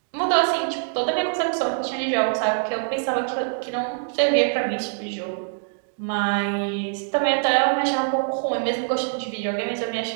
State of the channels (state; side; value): silent; left; digital silence